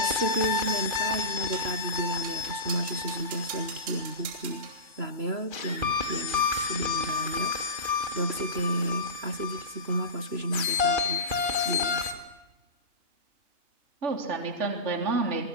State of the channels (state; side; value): late; left; 2.5 ms